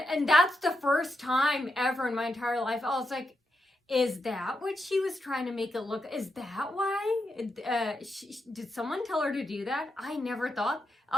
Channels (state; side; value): normal; both; correlation 0.84